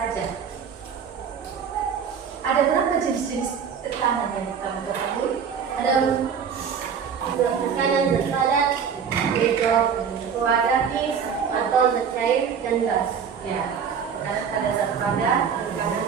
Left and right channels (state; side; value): quieter; left; 7.0 dB